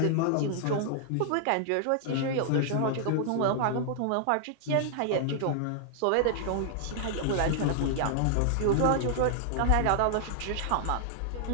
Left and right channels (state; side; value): different; both; correlation -0.01